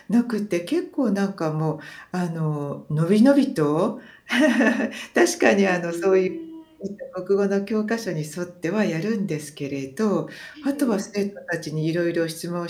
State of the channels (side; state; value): both; identical; correlation 1.00